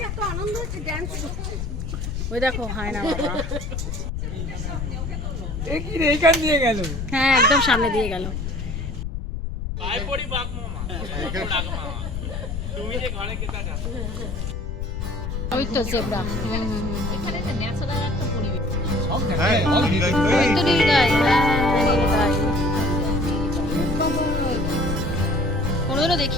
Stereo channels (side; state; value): left; noise; rumble, 4 dB below the sound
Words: ওই দেখো হায়না বাবা, এ কি রে, এইখান দিয়ে গেল? হ্যাঁ একদম সামনে দিয়ে গেল। ওই তো জেব্রা, এখানে যে ন্যাচারাল একটা পরিবেশ। সব দেখায়, সব দিকে। ওই তো নীলগাই, নীলগাই। কোনোদিনও